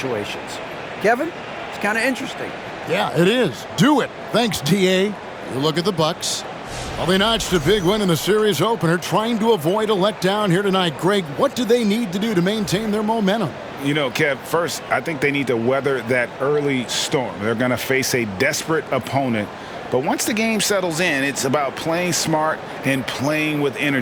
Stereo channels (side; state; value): both; identical; correlation 1.00